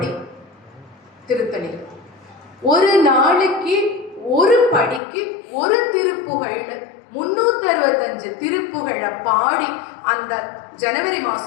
திருத்தணி. ஒரு நாளைக்கு ஒரு படிக்கு ஒரு திருப்புகழ், 365 திருப்புகழை பாடி அந்த ஜனவரி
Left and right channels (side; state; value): right; drops out; at 5.0 s